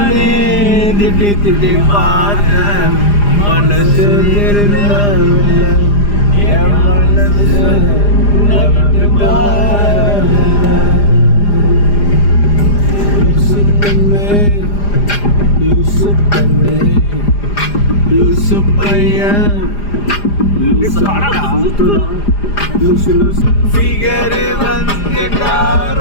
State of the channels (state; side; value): late; right; 4.9 ms